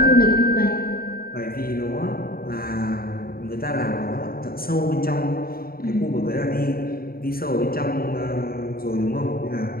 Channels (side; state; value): right; late; 0.43 ms